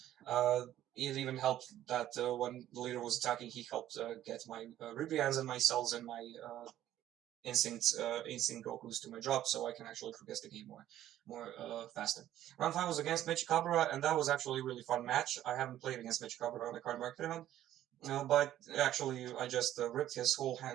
It even helped that when the leader was attacking, he helped get my Ribrians and my cells and my instinct Gokus to my drop, so I can actually progress the game more faster. Round five was against Michikabura, and that was actually a really fun match. I haven't played against Michikabura on the Cardmarket event, but actually I just ripped his whole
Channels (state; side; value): quieter; left; 12.6 dB